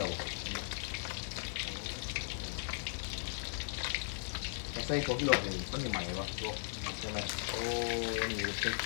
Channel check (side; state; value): right; silent; 53 dB below the other